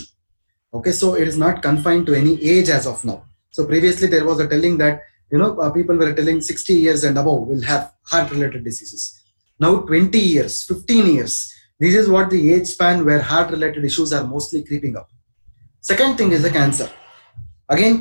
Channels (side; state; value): both; inverted; correlation -1.00